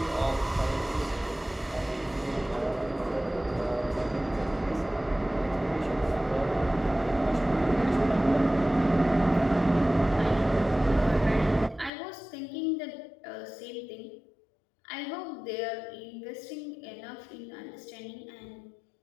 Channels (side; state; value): right; drops out; at 11.9 s